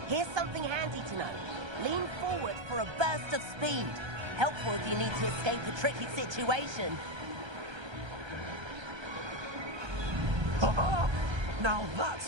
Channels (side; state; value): left; late; 1.3 ms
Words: Here's something handy to know. Lean forward for a burst of speed. Helpful if you need to escape a tricky situation. Now